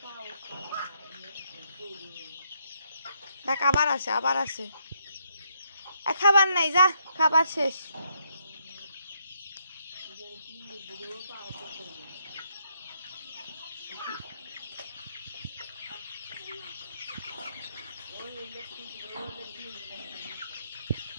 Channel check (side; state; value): both; inverted; correlation -0.74